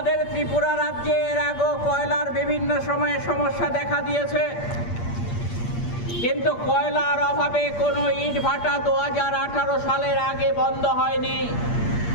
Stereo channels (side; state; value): right; late; 8.6 ms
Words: ত্রিপুরা রাজ্যে এর আগেও কয়লার বিভিন্ন সময়ে সমস্যা দেখা দিয়েছে, কিন্তু কয়লার অভাবে কোনো ইটভাটা 2018 সালের আগে বন্ধ হয়নি।